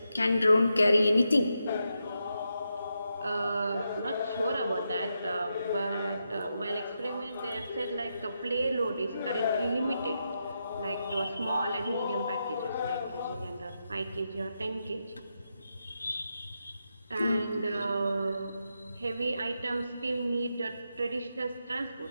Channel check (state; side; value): inverted; both; correlation -0.85